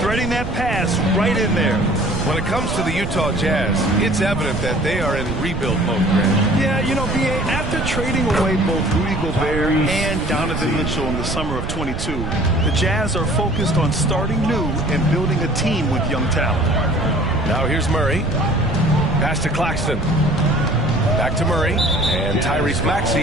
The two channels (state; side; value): noise; right; rumble, 5 dB below the sound